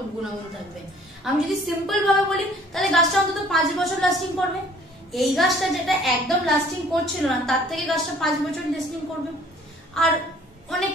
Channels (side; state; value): both; normal; correlation 0.56